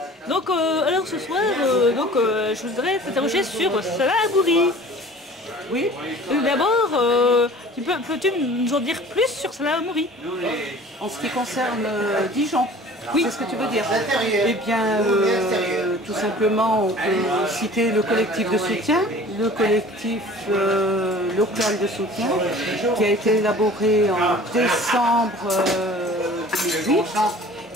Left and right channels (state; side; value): normal; both; correlation 0.45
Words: Donc, alors ce soir, je voudrais t'interroger sur Salah Hamouri. Oui. D'abord, peux-tu nous en dire plus sur Salah Hamouri? En ce qui concerne Dijon, oui. C'est ce que tu veux dire. Eh bien, tout simplement, on peut citer le collectif de soutien, le collectif local de soutien, qui a été élaboré en décembre 2008